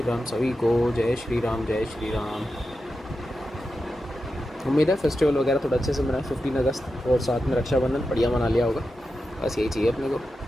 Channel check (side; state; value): both; normal; correlation 0.90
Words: सभी को। जय श्री राम, जय श्री राम। उम्मीद है फेस्टिवल वगैरह थोड़ा अच्छे से मनाए, 15 अगस्त और साथ में रक्षाबंधन बढ़िया मना लिया होगा। बस यही चाहिए अपने को,